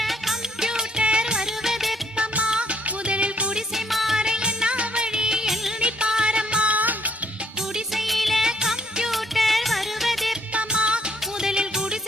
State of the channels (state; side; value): normal; both; correlation 0.67